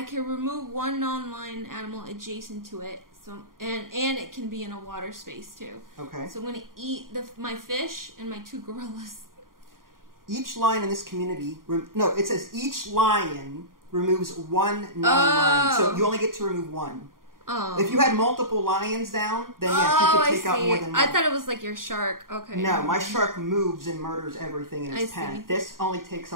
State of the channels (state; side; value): late; left; 0.91 ms